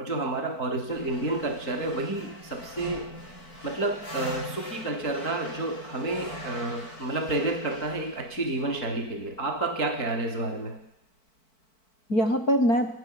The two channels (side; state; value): right; late; 4.5 ms